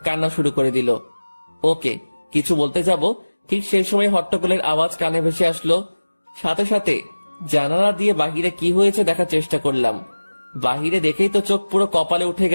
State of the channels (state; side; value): inverted; both; correlation -1.00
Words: কান্না শুরু করে দিল। ওকে কিছু বলতে যাব, ঠিক সেই সময় হট্টগোলের আওয়াজ কানে ভেসে আসলো। সাথে সাথে জানালা দিয়ে বাহিরে কি হয়েছে দেখার চেষ্টা করলাম। বাহিরে দেখেই তো চোখ পুরো কপালে উঠে